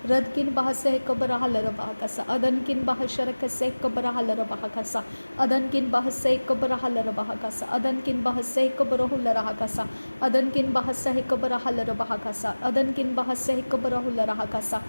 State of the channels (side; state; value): both; inverted; correlation -1.00